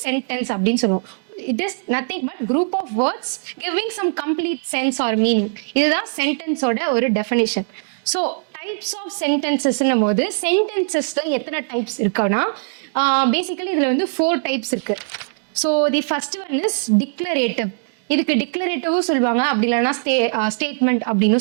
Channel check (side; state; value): left; silent; digital silence